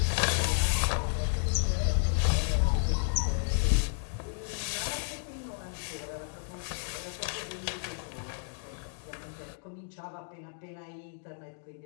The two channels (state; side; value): silent; right; digital silence